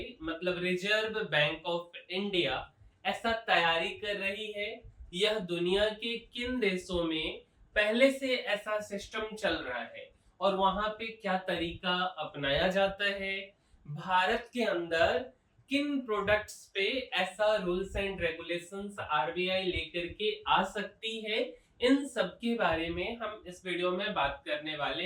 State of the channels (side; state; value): both; identical; correlation 1.00